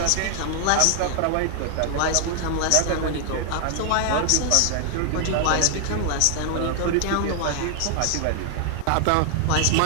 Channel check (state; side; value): different; both; correlation 0.00